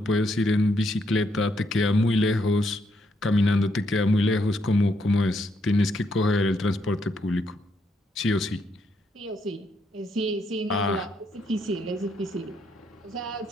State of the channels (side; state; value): both; normal; correlation 0.76